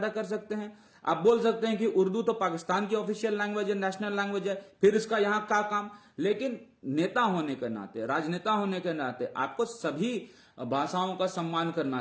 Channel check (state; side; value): identical; both; correlation 1.00